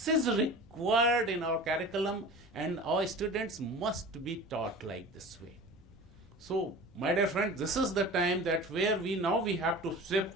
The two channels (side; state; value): both; normal; correlation 0.37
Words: is required in our curriculum, and our students must be taught like this way. So, my dear friend, this is the time that where we have to